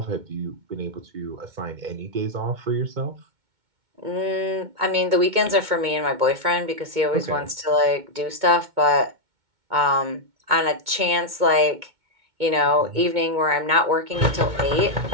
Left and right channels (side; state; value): left; late; 2.2 ms